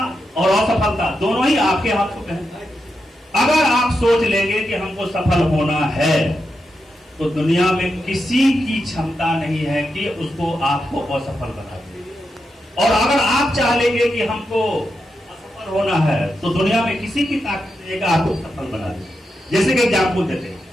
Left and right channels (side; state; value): both; normal; correlation 0.86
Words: और असफलता दोनों ही आपके हाथों में है। अगर आप सोच लेंगे कि हमको सफल होना है तो दुनिया में किसी की क्षमता नहीं है कि उसको आपको असफल बना दे। और अगर आप चाह लेंगे कि हमको असफल होना है तो दुनिया में किसी की ताकत नहीं है कि आपको सफल बना दे। जैसे कि एग्जाम्पल देते हैं,